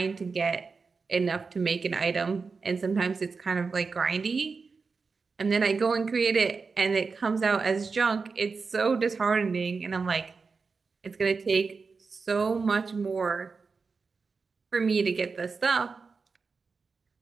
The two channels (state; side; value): quieter; left; 4.7 dB